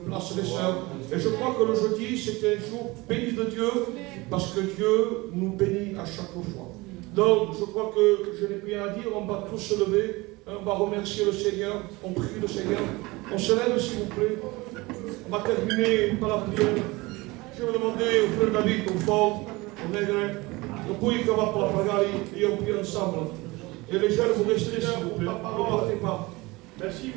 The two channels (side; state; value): left; quieter; 22.7 dB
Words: place les sœurs. Et je crois que le jeudi, c'était un jour béni de Dieu, parce que Dieu nous bénit à chaque fois. Donc, je crois que je n'ai plus rien à dire, on va tous se lever, on va remercier le Seigneur, on prie le Seigneur. On se lève, s'il vous plaît. On va terminer par la prière. Je vais demander au frère David, au fond, au nègre, au pays qu'on va pour la pagare, et on prie ensemble. Et les jeunes, vous restez là, ne partez pas. Merci